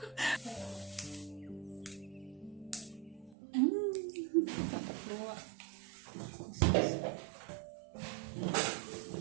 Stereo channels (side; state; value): left; drops out; at 3.4 s